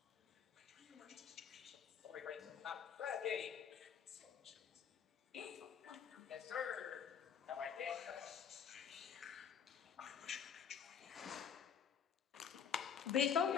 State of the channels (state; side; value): quieter; right; 7.9 dB